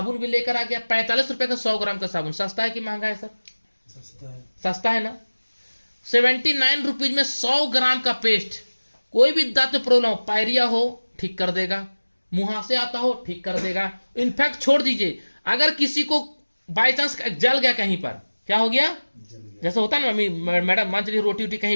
भी लेकर आ गया। 45 रुपए का 100 ग्राम का साबुन। सस्ता है कि महंगा है सर? सस्ता है ना। 79 रुपीज में 100 ग्राम का पेस्ट। कोई भी दांत में प्रॉब्लम हो, पायरिया हो ठीक कर देगा, मुहासे आता हो ठीक कर देगा। इनफैक्ट छोड़ दीजिए, अगर किसी को बाय चांस जल गया कहीं पर, क्या हो गया? जैसे होता है ना, मम्मी मैडम मान चलिए रोटी वोटी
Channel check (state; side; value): inverted; both; correlation -1.00